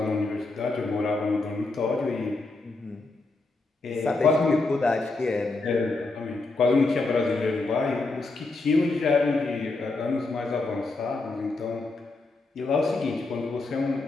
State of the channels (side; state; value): right; quieter; 3.4 dB